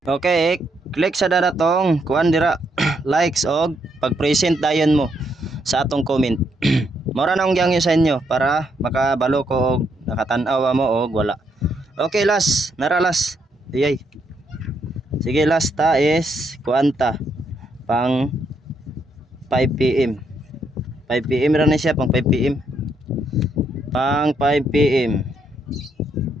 okay, click sa daratong kuan dira likes og pag-present dayon mo sa atong comment. Mura na akong gyangyo sa inyo para makabalo ko og nakatan-aw mo og wala. Okay last, nara last. Iyay. Sige last ta is kuanta pang 5 PM. 5 PM ra na siya pang 5 PM. Pang 5 PM.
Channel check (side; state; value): both; normal; correlation 0.76